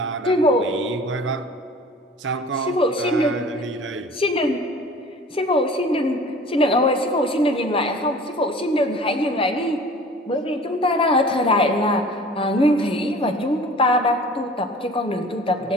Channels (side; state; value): both; normal; correlation 0.45